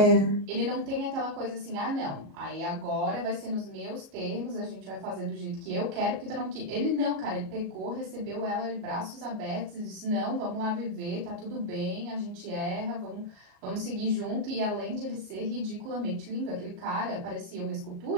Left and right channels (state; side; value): late; left; 38 ms